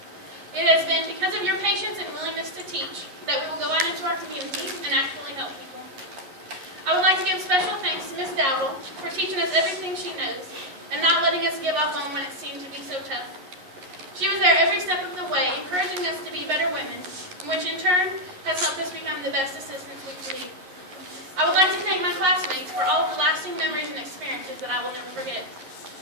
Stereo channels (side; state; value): left; late; 11 ms